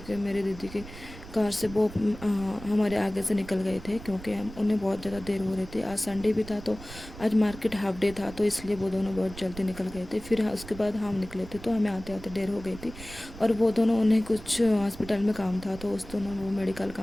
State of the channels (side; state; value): right; noise; rumble, 15 dB below the sound